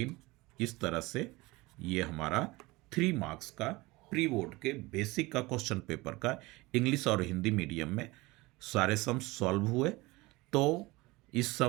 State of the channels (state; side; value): quieter; left; 22.0 dB